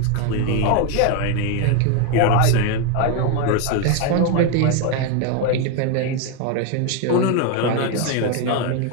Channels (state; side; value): different; both; correlation 0.01